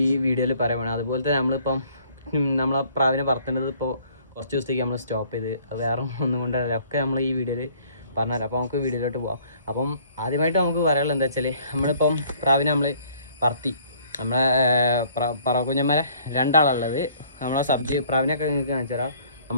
വീഡിയോയിൽ പറയുന്നത്. അതുപോലെ തന്നെ നമ്മളിപ്പം നമ്മളെ പ്രാവിനെ പറത്തേണ്ടത് ഇപ്പോൾ കുറച്ച് ദിവസത്തേക്ക് നമ്മൾ സ്റ്റോപ്പ് ചെയ്ത്, അത് വേറെ ഒന്നും കൊണ്ടല്ല, ഒക്കെ നമ്മൾ ഈ വീഡിയോയിൽ പറഞ്ഞുതരാം. അപ്പോൾ നമുക്ക് വീഡിയോയിലോട്ട് പോകാം. അപ്പം ആദ്യമായിട്ട് നമുക്ക് പറയാനുള്ളത് എന്താ വെച്ചാൽ, നമ്മളിപ്പം പ്രാവിനെ നമ്മൾ പറത്തി, നമ്മളെ പറവക്കുഞ്ഞന്മാരെ രണ്ടാളുള്ളത്. നമ്മളെ സബ്ജി പ്രാവിനൊക്കെ നിങ്ങൾക്ക് കാണിച്ചു തരാം.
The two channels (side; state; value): both; inverted; correlation -0.58